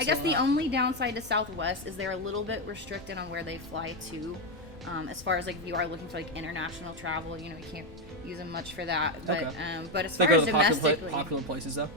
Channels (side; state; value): both; normal; correlation 0.07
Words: guess the only downside to Southwest is they're a little bit restricted on where they fly to, as far as like if you are looking for like international travel, you can't use them much for that. But but as far as domestically, popular places though.